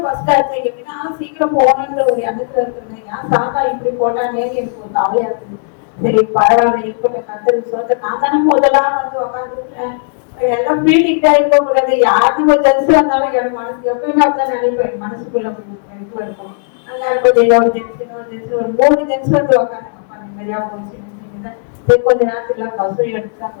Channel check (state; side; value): silent; right; digital silence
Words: பஸ் ஆச்சு எப்படின்னா சீக்கிரம் போகணுன்ற ஒரு எண்ணத்துல இருக்கிறது. ஏன் சாத்தா இப்படி போட்டானே எனக்கு ஒரு கவலையா இருக்குது. சரி பரவாயில்ல இருக்கட்டும், கத்தருக்கு சொல்ல நான் தானே முதலாம் வந்து உட்காந்துருக்கேன். எல்லாம் பீட்டிக்கிட்டா இருக்க கூடாது. யாருக்கும் ஒரு ஜென்ஸ் வந்தாலும் என் மனசு எப்பயுமே அப்படிதான் நினைப்பேன். மனசுக்குள்ள இது இருக்கும். அங்க கொஞ்சம் ஒரு ஜென்ஸ் ஒரு 3 ஜென்ஸ் வந்து உட்காந்து அப்பா நிம்மதியா போச்சு. கொஞ்ச நேரத்துல பஸ்ஸும் எடுத்துட்டாங்க.